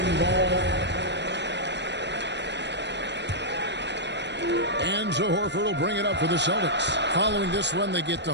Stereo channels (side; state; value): left; late; 0.51 ms